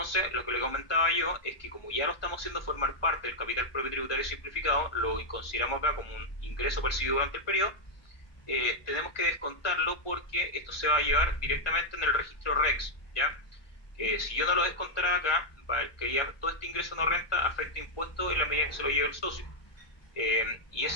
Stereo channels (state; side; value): late; right; 1.2 ms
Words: lo que le comentaba yo es que como ya lo estamos haciendo formar parte del capital propio tributario simplificado, lo consideramos acá como un ingreso percibido durante el periodo, tenemos que descontarlo porque esto se va a llevar directamente en el registro REX, ¿ya? Si yo no lo descontara acá, que ya todo este ingreso no renta afecta impuestos en la medida que se lo lleve el socio. Y